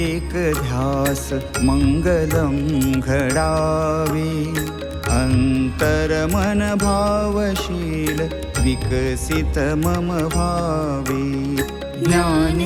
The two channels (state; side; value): identical; both; correlation 1.00